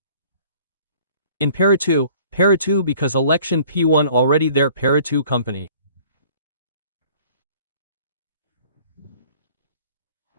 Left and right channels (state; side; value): inverted; both; correlation -0.53